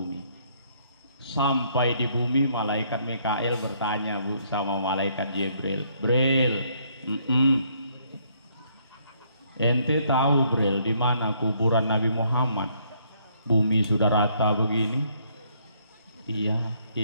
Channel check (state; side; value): inverted; both; correlation -0.68